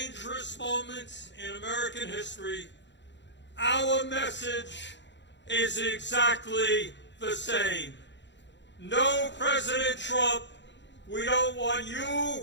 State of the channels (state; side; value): late; right; 0.52 ms